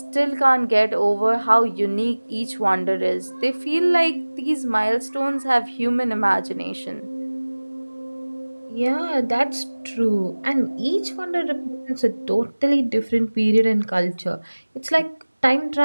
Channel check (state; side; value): inverted; both; correlation -1.00